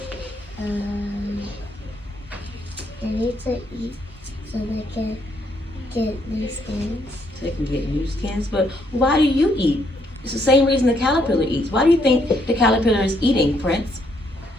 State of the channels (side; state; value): both; normal; correlation 0.72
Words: they need to eat so they can get new skins. So they can get new skins. But why do you eat? It's the same reason the caterpillar eats. Why do you think the caterpillar is eating, Prince?